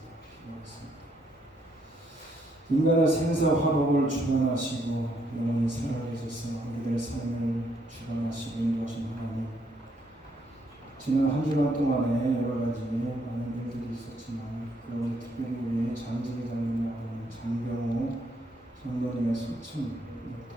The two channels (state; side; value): normal; both; correlation 0.72